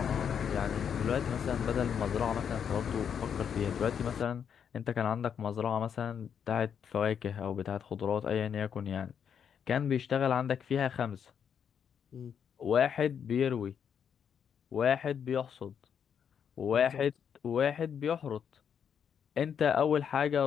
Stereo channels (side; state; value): right; quieter; 7.8 dB